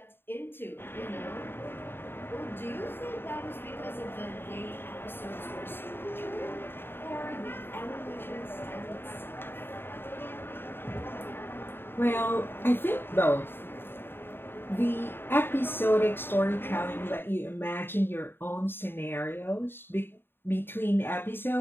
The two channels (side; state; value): right; late; 0.10 ms